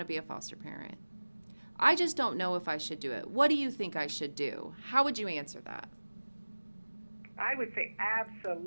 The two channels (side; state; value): both; inverted; correlation -1.00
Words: to be a foster parent. I just don't know if I should do it. What do you think I should do? How would you answer that? I would say